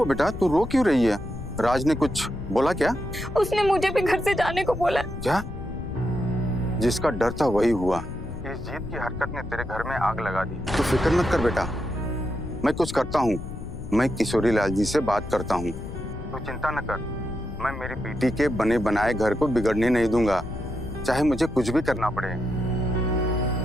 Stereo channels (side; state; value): left; noise; rumble, 9 dB below the sound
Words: बेटा, तू रो क्यों रही है? राज ने कुछ बोला क्या? उसने मुझे भी घर से जाने को बोला। क्या? जिसका डर था वही हुआ। इस जीत की हरकत ने तेरे घर में आग लगा दी। तू फिक्र मत कर बेटा, मैं कुछ करता हूँ। मैं किशोरी लाल जी से बात करता हूँ। तू चिंता न कर, मैं मेरी बेटी के बने बनाए घर को बिगड़ने नहीं दूंगा, चाहे मुझे कुछ भी करना पड़े।